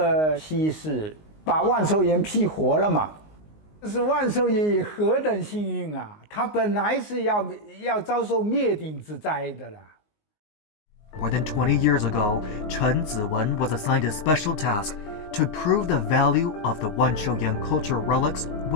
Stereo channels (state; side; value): late; right; 19 ms